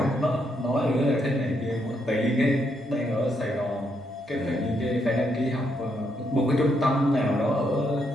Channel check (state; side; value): normal; both; correlation 0.77